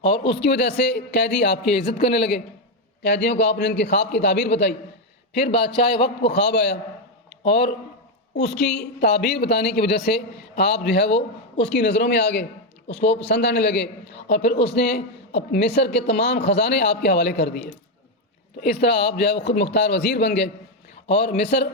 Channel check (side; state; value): both; normal; correlation 0.05